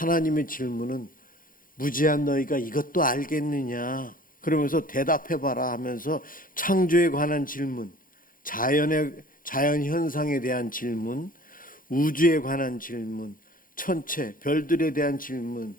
질문은 무지한 너희가 이것도 알겠느냐? 그러면서 대답해봐라 하면서 창조에 관한 질문, 자연 현상에 대한 질문, 우주에 관한 질문, 천체, 별들에 대한 질문,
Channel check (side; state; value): right; late; 0.40 ms